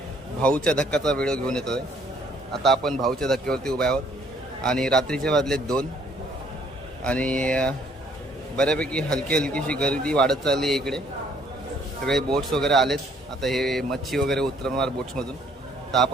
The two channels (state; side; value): normal; both; correlation 0.63